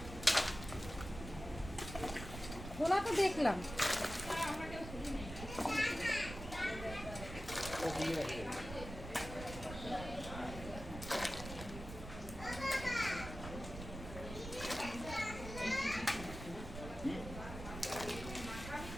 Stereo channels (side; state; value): right; noise; rumble, 10 dB below the sound